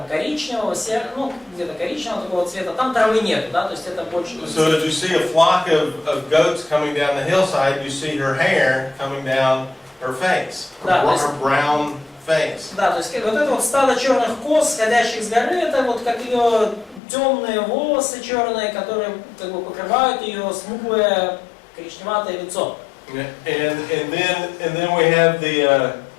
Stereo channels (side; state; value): right; drops out; at 17.0 s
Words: коричневого, ну где-то коричневого такого цвета, там травы нету, да, то есть это больше. So as you see a flock of goats coming down the hillside, you see her hair coming down her face, her brown face. Да, то есть вот это вот стадо черных коз, сходящих с горы, это вот как ее темные волосы черные, которые как бы покрывают ее смуглое коричневатое лицо. And then we have the